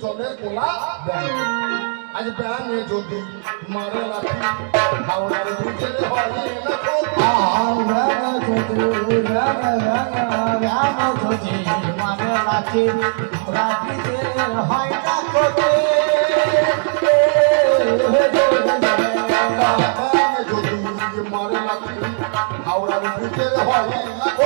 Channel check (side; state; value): left; silent; digital silence